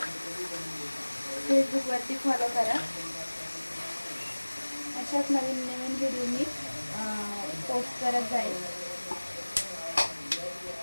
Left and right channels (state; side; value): inverted; both; correlation -1.00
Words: फेसबुकवरती फॉलो करा. अशाच नवीन नवीन व्हिडिओ मी पोस्ट करत जाईल.